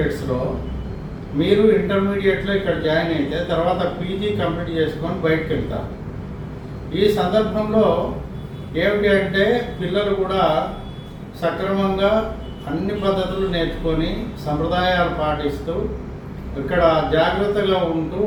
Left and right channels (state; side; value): identical; both; correlation 1.00